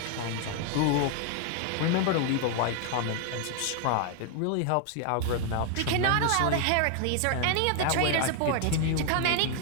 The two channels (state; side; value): different; both; correlation 0.00